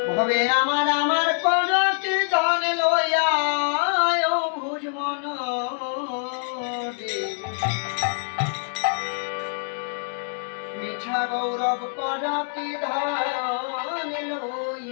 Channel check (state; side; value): silent; right; digital silence